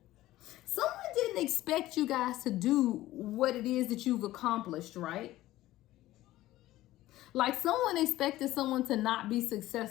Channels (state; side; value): quieter; right; 15.9 dB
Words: Someone didn't expect you guys to do what it is that you've accomplished, right? Like someone expected someone to not be